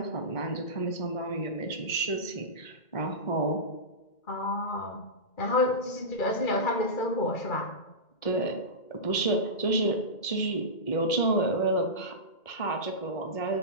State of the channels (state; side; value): late; right; 2.1 ms